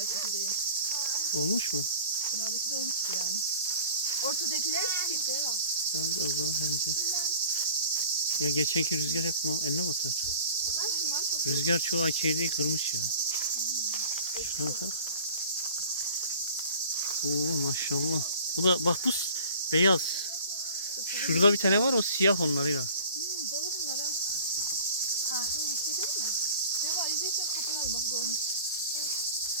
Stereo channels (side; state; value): both; inverted; correlation -0.44